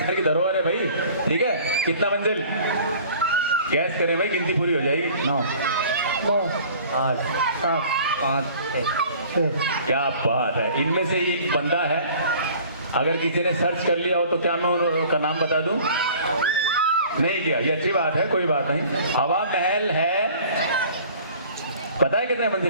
की धरोहर है भाई, ठीक है? कितना मंजिल? गैस करें भाई, गिनती पूरी हो जाएगी। 9, 8, 7, 5, 6। क्या बात है, इनमें से ही एक बंदा है। अगर किसी ने सर्च कर लिया हो तो क्या मैं उनका नाम बता दूं? नहीं किया, ये अच्छी बात है, कोई बात नहीं। हवा महल है, पता है कितने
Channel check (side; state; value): both; inverted; correlation -0.49